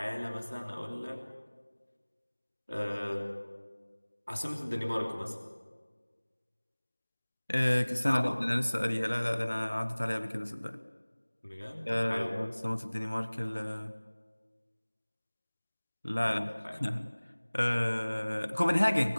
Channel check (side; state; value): both; inverted; correlation -1.00